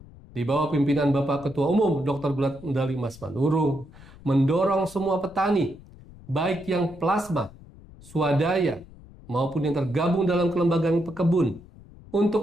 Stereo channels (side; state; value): left; noise; rumble, 21 dB below the sound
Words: di bawah pimpinan Bapak Ketua Umum Dr. Gulat Medali Mas Manurung mendorong semua petani, baik yang plasma, swadaya, maupun yang tergabung dalam kelembagaan pekebun,